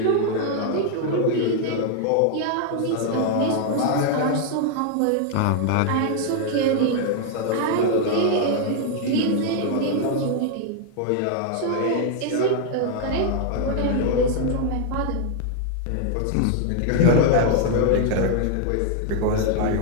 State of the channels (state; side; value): different; both; correlation 0.00